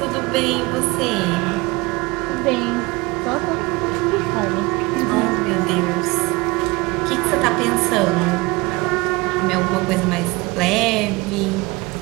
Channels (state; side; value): quieter; left; 23.8 dB